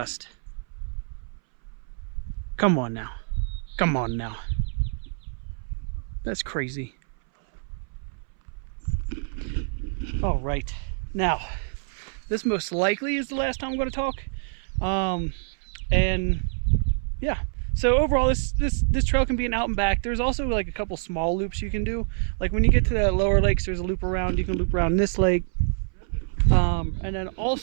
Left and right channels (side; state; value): left; silent; 61 dB below the other